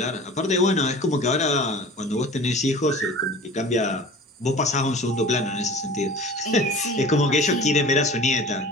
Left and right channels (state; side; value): normal; both; correlation 0.41